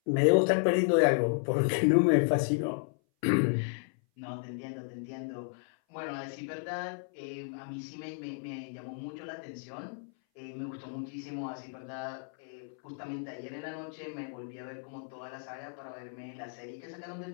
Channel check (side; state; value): right; silent; 56 dB below the other